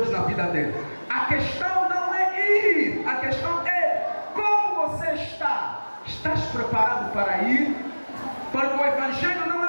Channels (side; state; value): both; inverted; correlation -1.00